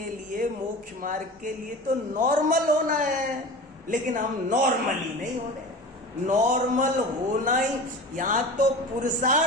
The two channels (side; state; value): both; normal; correlation 0.34